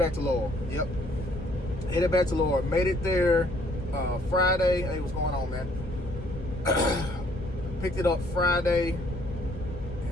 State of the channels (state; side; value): normal; both; correlation 0.63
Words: to Laurel. Yep. Headed back to Laurel. Made it there Friday. Hey, what's going on, man? Picked it up Friday,